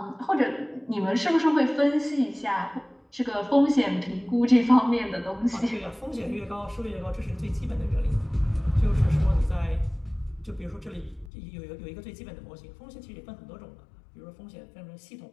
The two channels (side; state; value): right; drops out; at 11.3 s